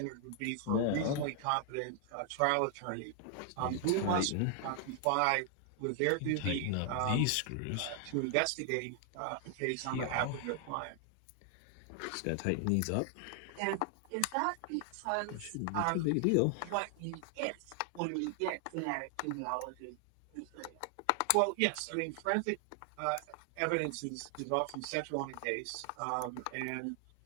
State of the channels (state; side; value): different; both; correlation 0.00